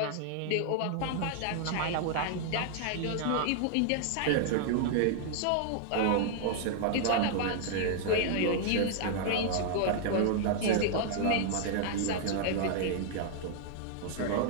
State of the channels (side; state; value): both; different; correlation 0.00